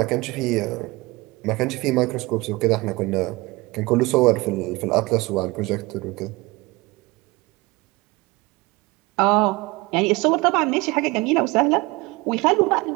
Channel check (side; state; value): left; quieter; 22.8 dB